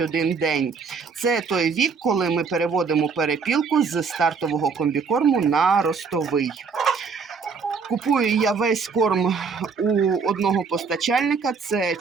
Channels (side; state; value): left; quieter; 5.3 dB